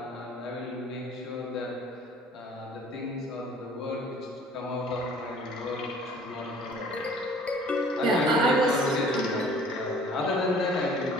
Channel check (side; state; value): both; normal; correlation 0.51